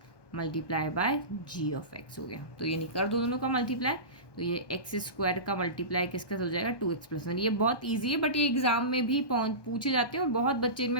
multiply by g of x हो गया। तो ये नहीं कर दो दोनों का मल्टीप्लाई, तो ये एक्स स्क्वायर का मल्टीप्लाई किसका हो जाएगा 2x प्लस 1। ये बहुत ईजी है, बट ये एग्जाम में भी पूछे जाते हैं और बहुत बच्चे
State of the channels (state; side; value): late; right; 1.2 ms